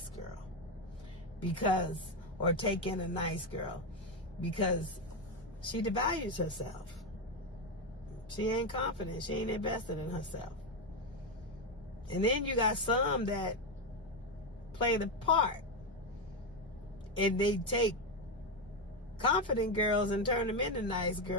girl or take in a nice girl, because she devalues herself. She ain't confident. She ain't invested in herself. And then you got some that play the part, and they take confident girls and turn them into nice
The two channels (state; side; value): normal; both; correlation 0.09